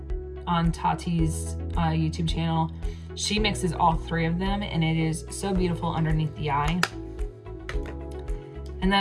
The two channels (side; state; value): both; identical; correlation 1.00